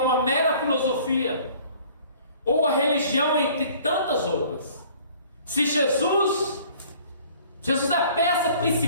mera filosofia ou a religião entre tantas outras. Se Jesus é a peça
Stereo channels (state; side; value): inverted; both; correlation -0.53